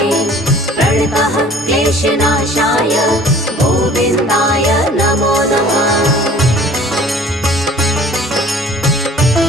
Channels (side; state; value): both; normal; correlation 0.49